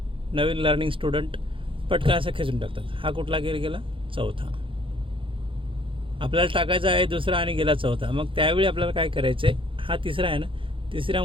नवीन लर्निंग स्टुडंट पटकन असं खेचून टाकतात. हा कुठला गिअर गेला? चौथा. आपल्याला टाकायचा आहे दुसरा आणि गेला चौथा. मग त्यावेळी आपल्याला काय करायचं आहे, हा तिसरा आहे ना,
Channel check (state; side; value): late; left; 0.25 ms